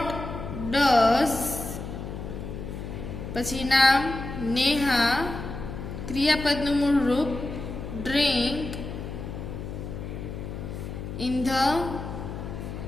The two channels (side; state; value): left; noise; hum, 8 dB below the sound